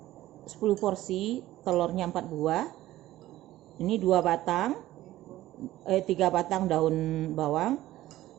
10 porsi, telurnya 4 buah. Ini 3 batang daun bawang.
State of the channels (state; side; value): quieter; left; 15.3 dB